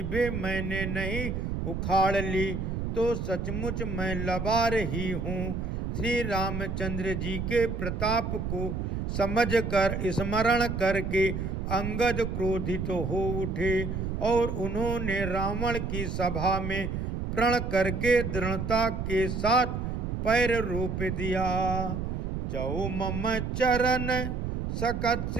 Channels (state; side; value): noise; right; rumble, 3 dB below the sound